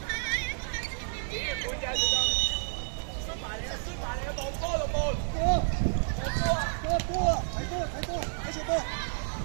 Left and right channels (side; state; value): left; silent; digital silence